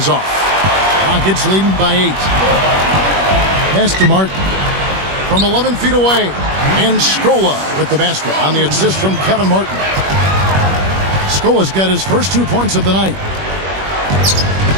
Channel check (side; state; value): left; late; 21 ms